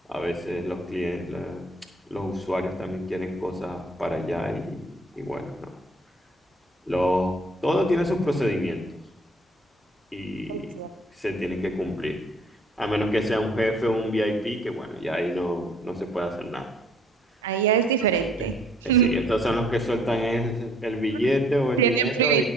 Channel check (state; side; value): normal; both; correlation 0.60